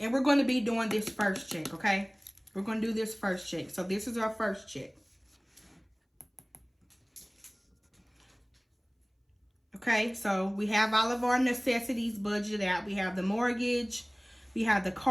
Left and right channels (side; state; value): both; identical; correlation 1.00